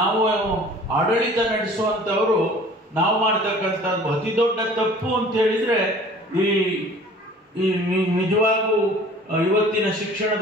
ಆಡಳಿತ ನಡೆಸುವಂಥವರು ನಾವು ಮಾಡ್ತಕ್ಕಂಥದ್ದು ಅತಿ ದೊಡ್ಡ ತಪ್ಪು ಅಂತ ಹೇಳಿದ್ರೆ, ಈ ನಿಜವಾಗೂ ಇವತ್ತಿನ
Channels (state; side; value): normal; both; correlation 0.48